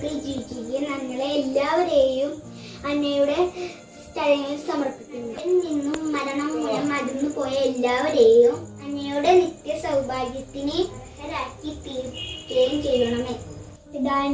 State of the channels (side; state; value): both; identical; correlation 1.00